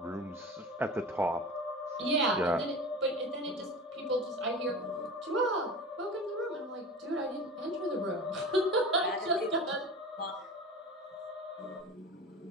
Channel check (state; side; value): normal; both; correlation 0.34